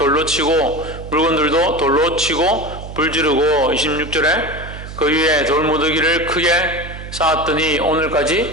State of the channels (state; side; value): noise; right; hum, 11 dB below the sound